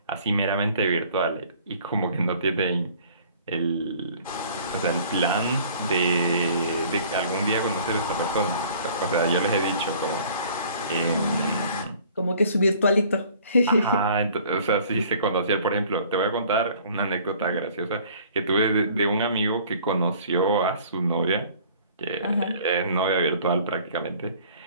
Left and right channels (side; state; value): both; inverted; correlation -0.53